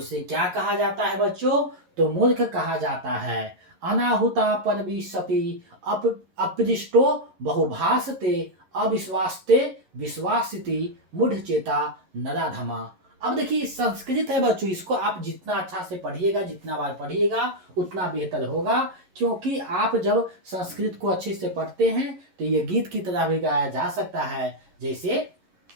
क्या कहा जाता है बच्चों? तो मूर्ख कहा जाता है। अनाहुता परविशति अपृष्टो बहुभासते अविश्वासते विश्वासिति मूढ़ चेता नराधमा। अब देखिए संस्कृत है बच्चों, इसको आप जितना अच्छा से पढ़िएगा, जितना बार पढ़िएगा उतना बेहतर होगा, क्योंकि आप जब संस्कृत को अच्छे से पढ़ते हैं तो ये गीत की तरह भी गाया जा सकता है। जैसे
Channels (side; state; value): left; late; 11 ms